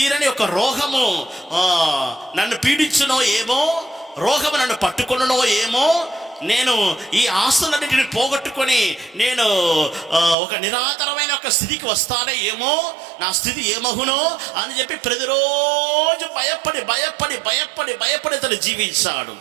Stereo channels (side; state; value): left; drops out; at 10.4 s